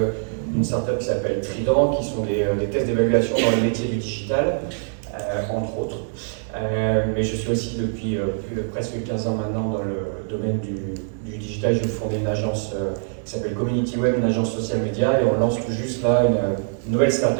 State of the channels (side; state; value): left; silent; digital silence